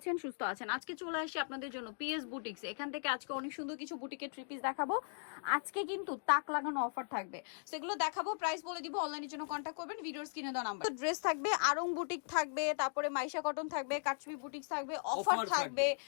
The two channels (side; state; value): right; silent; digital silence